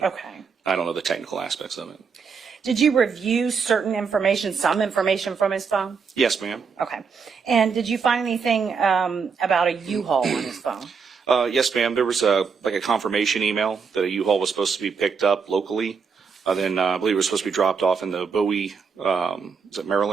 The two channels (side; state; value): left; quieter; 5.7 dB